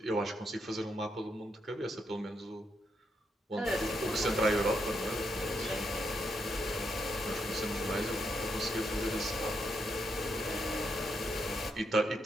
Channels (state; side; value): normal; both; correlation 0.80